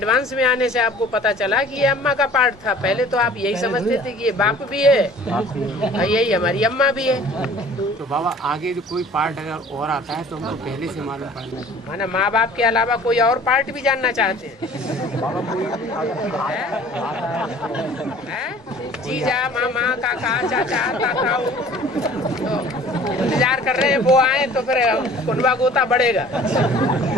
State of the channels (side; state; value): both; normal; correlation 0.49